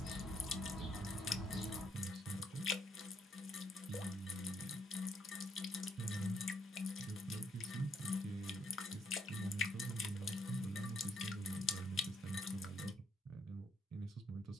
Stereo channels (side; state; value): both; normal; correlation 0.72